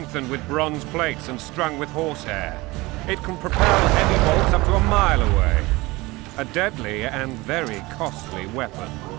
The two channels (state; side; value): quieter; left; 21.8 dB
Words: with bronze plates and strung with horsehair. It can propel heavy bolts up to a mile away. A deadly and very costly weapon.